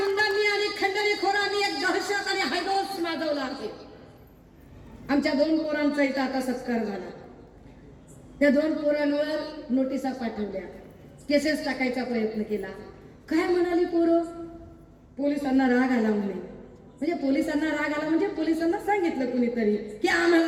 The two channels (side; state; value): both; identical; correlation 1.00